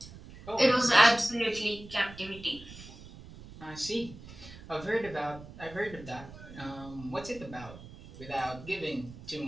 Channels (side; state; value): right; noise; rumble, 16 dB below the sound